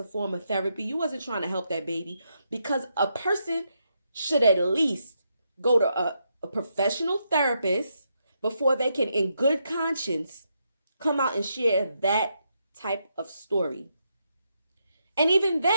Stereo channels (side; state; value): both; inverted; correlation -0.80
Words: form of therapy. You wasn't trying to help that baby, because a person should at least go to a professional therapist before they can, in good conscience, come out and share that type of story. And even